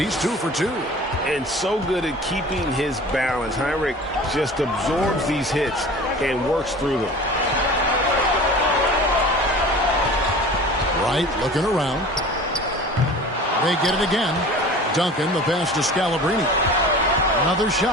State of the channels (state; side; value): normal; both; correlation 0.40